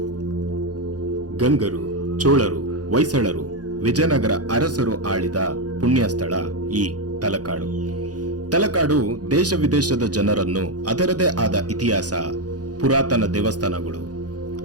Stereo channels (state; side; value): late; left; 0.68 ms